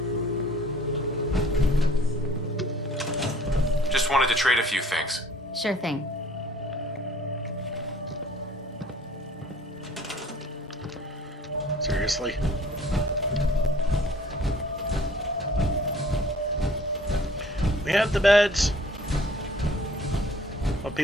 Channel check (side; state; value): both; normal; correlation 0.53